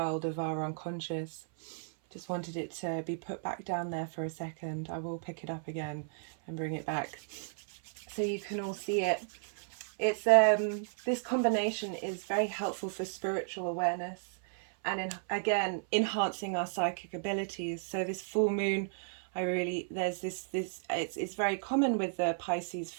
of our unconscious. Just wanted it to be put back down there for a second. I will pick it up again and bring it back so you can all see it. It's this combination is very helpful for spiritual awareness and again enhancing our psychic abilities. So this full moon, there's this it's very common with the Pisces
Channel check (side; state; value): left; silent; 55 dB below the other